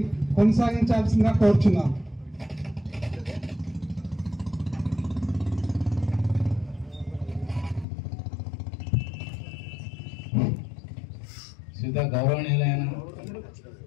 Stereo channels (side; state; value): right; drops out; at 7.9 s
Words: కొనసాగించాల్సిందిగా కోరుచున్నాను. శ్రీత గౌరవనీయులైన